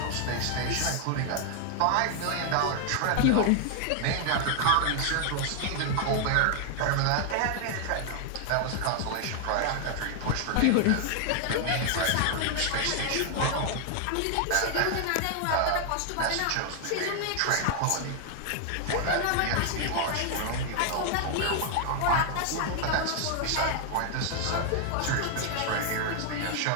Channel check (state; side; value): different; both; correlation 0.00